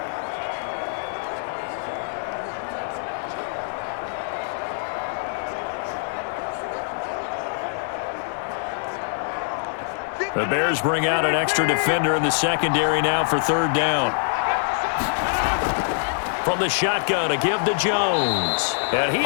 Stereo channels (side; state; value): right; silent; digital silence